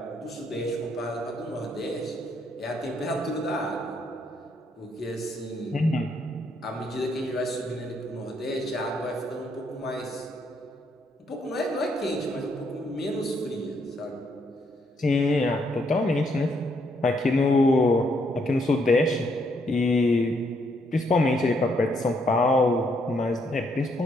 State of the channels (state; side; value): normal; both; correlation 0.73